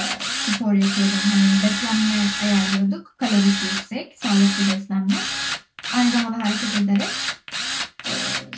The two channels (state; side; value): identical; both; correlation 1.00